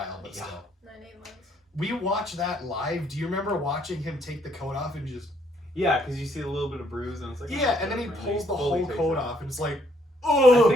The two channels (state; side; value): normal; both; correlation 0.68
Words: but still. 9-8 months. We watched that live. Do you remember watching him take the coat off and just... Yeah, because you see a little bit of bruise and it's like... Yeah, and then he pulls the fully whole takes coat it off and it's like, I oh!